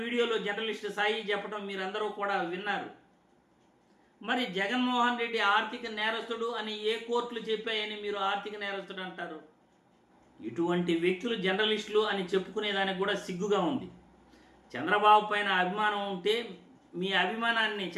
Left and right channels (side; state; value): both; identical; correlation 1.00